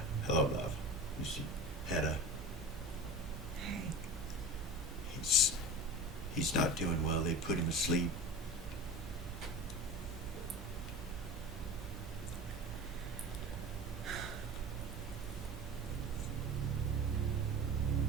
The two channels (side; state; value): both; normal; correlation 0.32